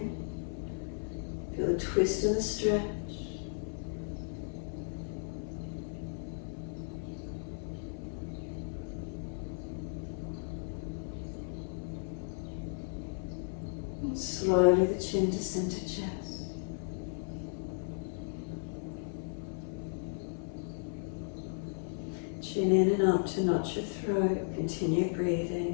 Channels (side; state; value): right; silent; 54 dB below the other